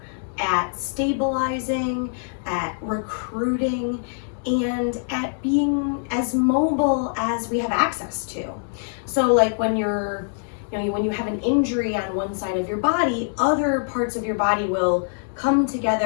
at stabilizing, at recruiting, and at being as mobile as we have access to. So when when you have an injury on one side of your body, other parts of your body will come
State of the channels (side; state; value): right; silent; digital silence